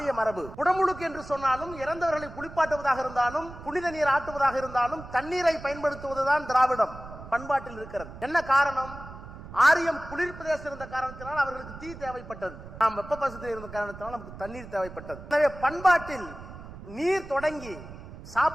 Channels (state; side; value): noise; right; rumble, 14 dB below the sound